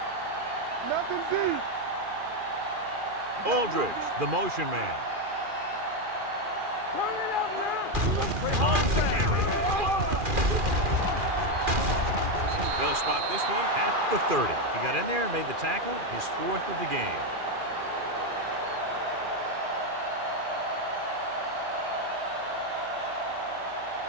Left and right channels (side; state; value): left; late; 2.4 ms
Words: Nothing deep. Aldridge, the motion man. Turn it up, man. On the carry. They'll spot this one at the 30. He got in there and made the tackle, his 4th of the game.